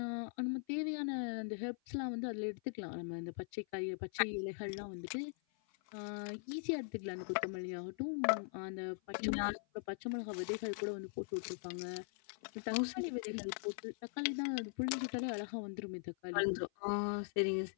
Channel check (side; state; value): right; silent; 50 dB below the other